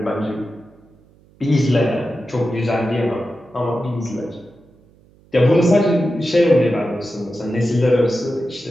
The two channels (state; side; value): noise; right; hum, 29 dB below the sound